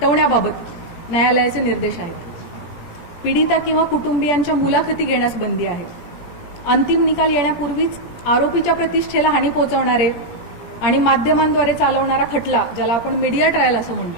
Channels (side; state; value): right; late; 17 ms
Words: न्यायालयाचे निर्देश आहेत। पीडिता किंवा कुटुंबियांच्या मुलाखती घेण्यास बंदी आहे। अंतिम निकाल येण्यापूर्वीच आरोपीच्या प्रतिष्ठेला हानी पोहोचवणारे आणि माध्यमांद्वारे चालवणारा खटला, ज्याला आपण मीडिया ट्रायल असं